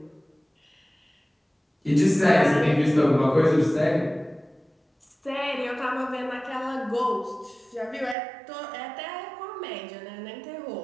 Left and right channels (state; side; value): drops out; left; at 8.2 s